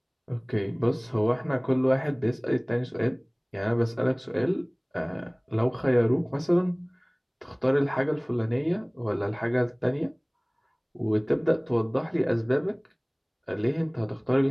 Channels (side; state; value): both; identical; correlation 1.00